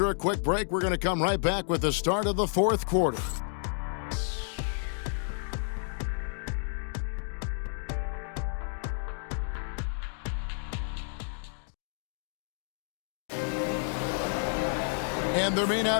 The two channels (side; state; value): right; silent; 57 dB below the other